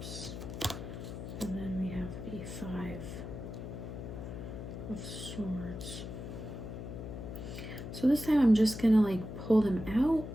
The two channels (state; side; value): noise; left; hum, 8 dB below the sound